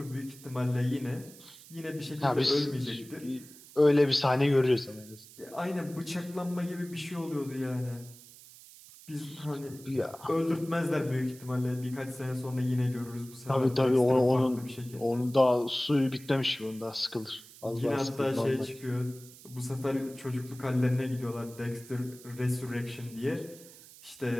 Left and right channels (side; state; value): right; noise; hiss, 20 dB below the sound